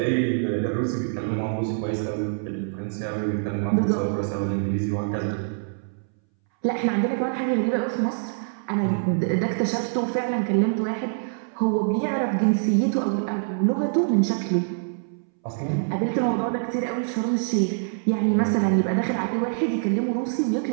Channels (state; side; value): silent; left; 62 dB below the other